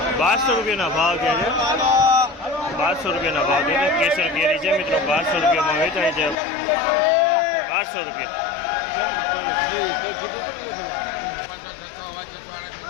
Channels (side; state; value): right; drops out; at 6.4 s